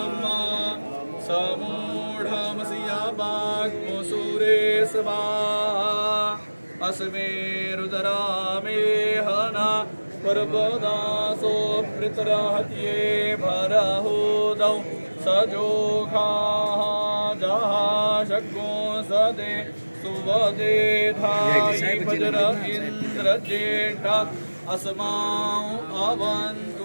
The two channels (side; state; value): both; inverted; correlation -1.00